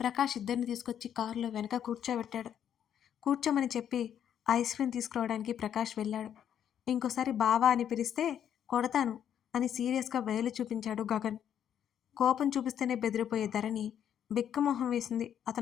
ఇద్దరిని తీసుకొచ్చి కారులో వెనక కూర్చోబెట్టాడు. కూర్చోమని చెప్పి ఐస్ క్రీమ్ తీసుకురావడానికి ప్రకాష్ వెళ్ళాడు. ఇంకోసారి బావా అని పిలిస్తే కొడతాను అని సీరియస్‌గా వేలు చూపించాడు గగన్. కోపం చూపిస్తేనే బెదిరిపోయే ధరణి బిక్కమొహం వేసింది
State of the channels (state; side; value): quieter; right; 9.4 dB